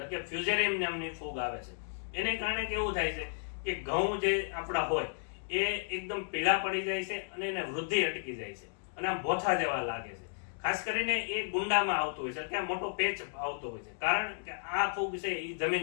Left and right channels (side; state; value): right; silent; digital silence